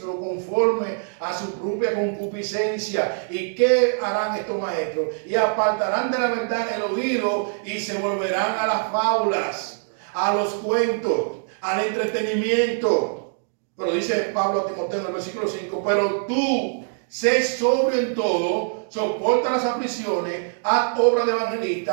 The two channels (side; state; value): left; silent; digital silence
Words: conforme a su propia concupiscencia. ¿Y qué harán estos maestros? Y apartarán de la verdad el oído y se volverán a las fábulas, a los cuentos, al entretenimiento. Pero dice Pablo a Timoteo en el versículo 5, pero tú sé sobrio en todo, soporta las aflicciones, haz obra de